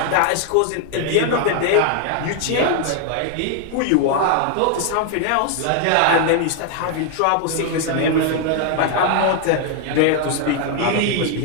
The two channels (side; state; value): both; different; correlation 0.00